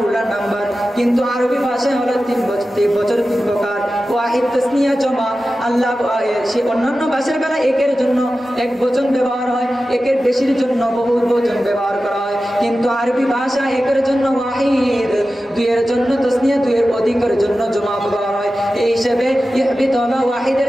নাম্বার। কিন্তু আরবি ভাষায় হলো তিন বচন, তিন প্রকার, ওয়াহিদ, তাসনিয়া, জমা। আল্লাহ সে অন্যান্য ভাষার বেলা একের জন্য এক বচন ব্যবহার হয়, একের বেশির জন্য বহু বচন ব্যবহার করা হয়। কিন্তু আরবি ভাষা একের জন্য ওয়াহিদ, দুইয়ের জন্য তাসনিয়া, দুইয়ের অধিকের জন্য জমা ব্যবহার হয়। এই হিসেবে ইহবিত হলো ওয়াহিদের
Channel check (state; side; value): normal; both; correlation 0.94